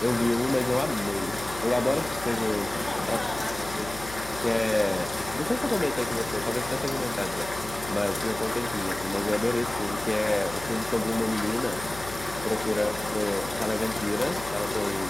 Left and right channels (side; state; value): left; noise; hum, 14 dB below the sound